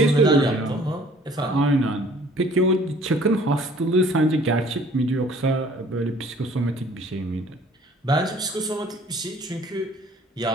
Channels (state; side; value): normal; both; correlation 0.54